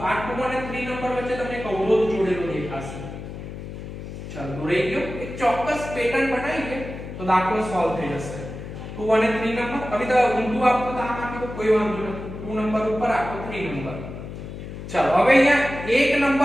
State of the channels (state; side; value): noise; left; hum, 10 dB below the sound